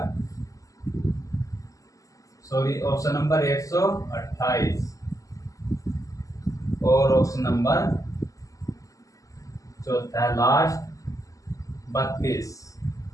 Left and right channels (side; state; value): right; late; 0.16 ms